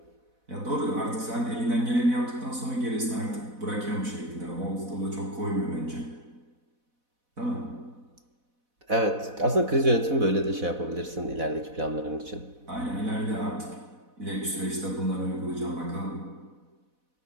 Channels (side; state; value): left; late; 4.1 ms